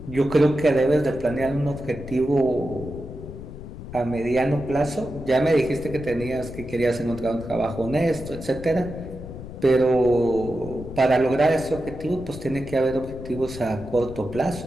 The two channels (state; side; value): noise; left; rumble, 12 dB below the sound